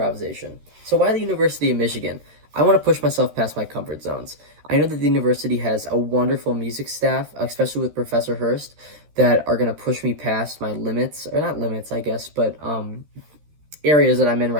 So, why the University of Michigan? I want to push myself past my comfort zones. I know that the university has a wonderful music staff, especially with Professor Hurst, that are going to push me past my limits, or not limits, I guess, but areas that I'm in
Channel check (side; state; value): left; late; 13 ms